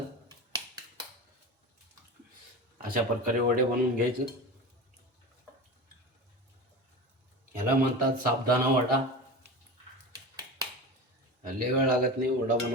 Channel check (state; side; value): normal; both; correlation 0.28